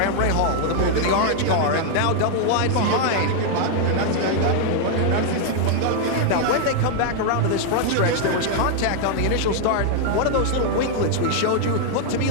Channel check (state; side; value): different; both; correlation 0.00